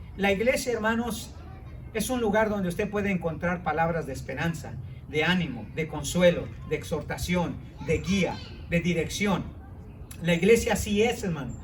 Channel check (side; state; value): both; identical; correlation 1.00